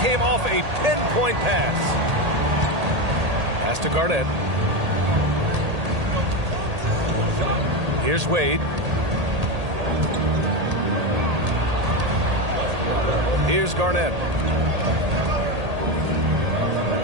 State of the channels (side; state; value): left; late; 1.8 ms